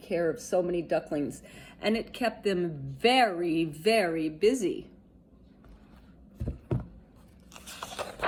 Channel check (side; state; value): both; identical; correlation 1.00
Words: of so many ducklings, and it kept them very, very busy.